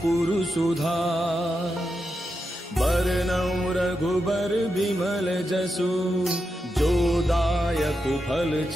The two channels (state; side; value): normal; both; correlation 0.87